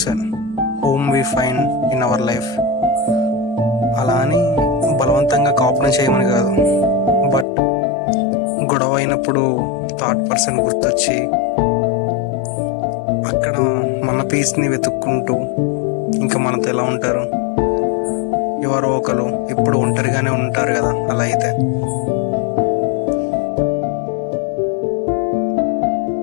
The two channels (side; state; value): right; drops out; at 7.5 s